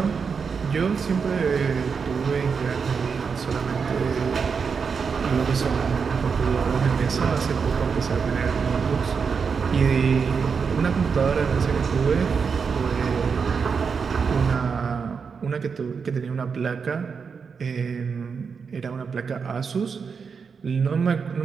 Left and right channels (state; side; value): quieter; left; 5.8 dB